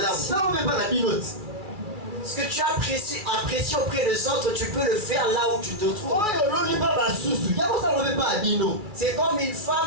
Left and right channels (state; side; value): late; left; 2.3 ms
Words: Ce que tu as apprécié auprès des autres, tu peux le faire là où tu te trouves. C'est comme une